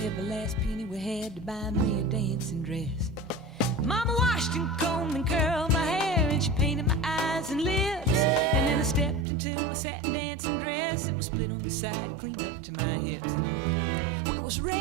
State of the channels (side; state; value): left; drops out; at 9.2 s